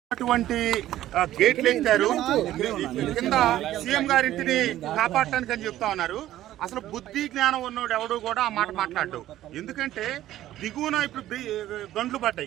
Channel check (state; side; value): quieter; left; 13.6 dB